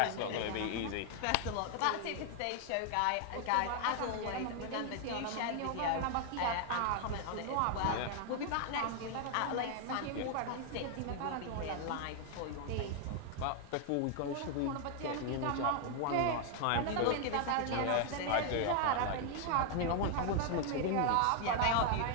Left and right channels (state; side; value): different; both; correlation 0.00